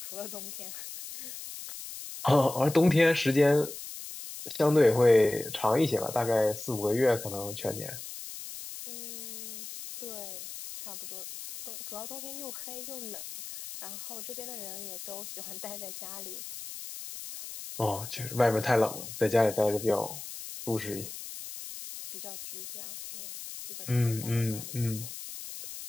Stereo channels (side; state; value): left; noise; hiss, 10 dB below the sound